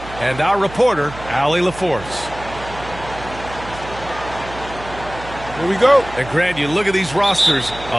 and our reporter, Allie LaForce. Here we go. And Grant, you look at these rosters,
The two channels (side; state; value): right; noise; hum, 14 dB below the sound